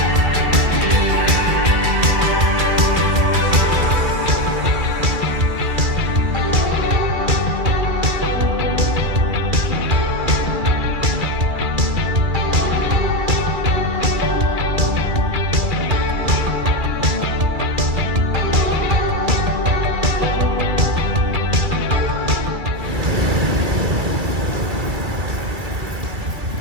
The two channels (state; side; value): late; left; 2.3 ms